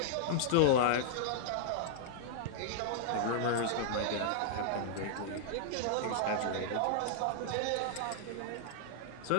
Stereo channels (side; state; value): both; different; correlation -0.01